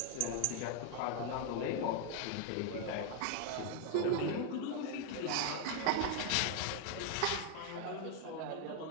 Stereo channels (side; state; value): both; different; correlation 0.01